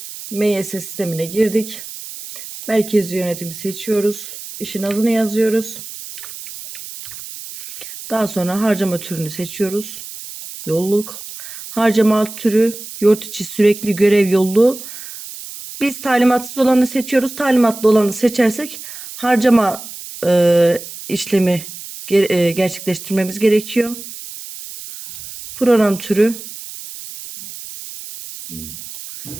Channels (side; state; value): right; noise; hiss, 12 dB below the sound